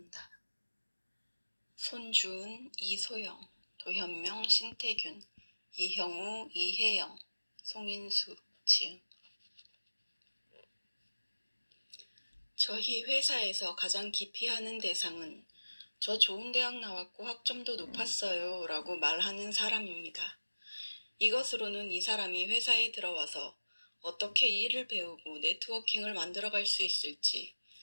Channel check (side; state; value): both; inverted; correlation -1.00